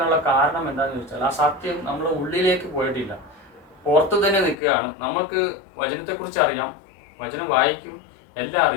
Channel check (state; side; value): drops out; right; at 4.5 s